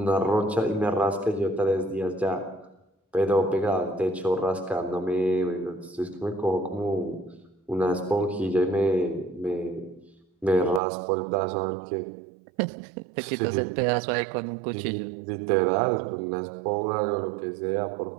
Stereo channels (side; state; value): left; drops out; at 10.8 s